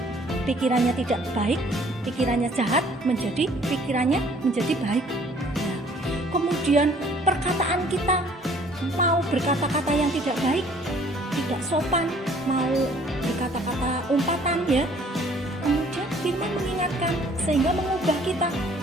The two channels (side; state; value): both; normal; correlation 0.57